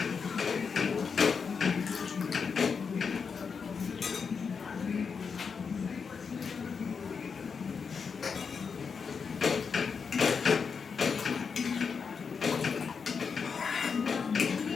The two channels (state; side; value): quieter; right; 5.8 dB